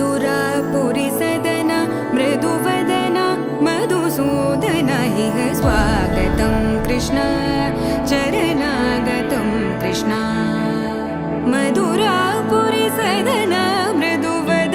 सदना मृदुवदना मधुसूदन इह स्वागतं कृष्ण चरणागतं कृष्ण मधुरापुरी सदना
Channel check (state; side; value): identical; both; correlation 1.00